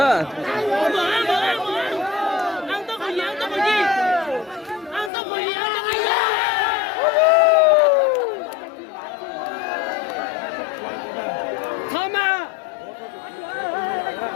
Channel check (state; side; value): drops out; right; at 5.1 s